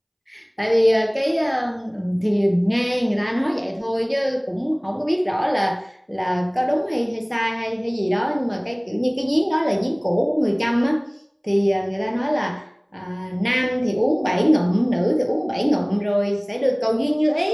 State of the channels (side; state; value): both; identical; correlation 1.00